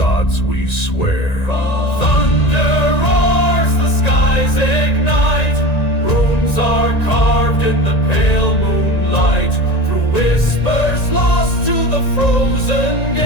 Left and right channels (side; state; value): right; late; 1.9 ms